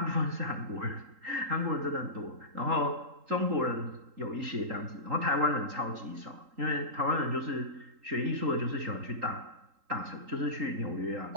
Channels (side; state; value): left; late; 3.8 ms